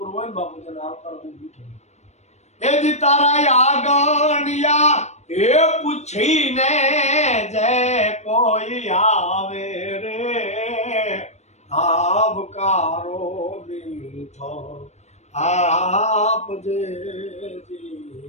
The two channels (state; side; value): late; right; 0.32 ms